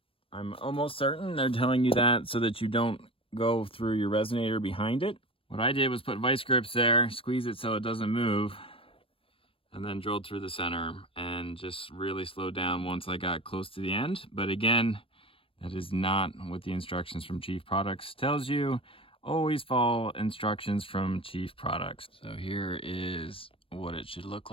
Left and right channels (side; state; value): right; late; 0.26 ms